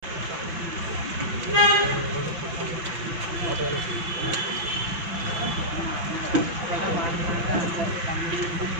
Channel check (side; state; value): left; late; 6.0 ms